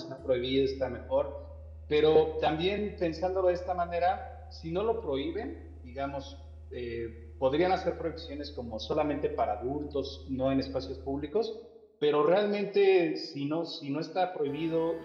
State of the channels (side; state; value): both; identical; correlation 1.00